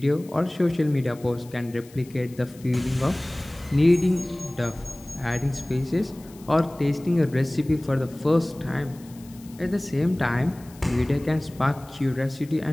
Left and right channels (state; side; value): noise; left; hiss, 24 dB below the sound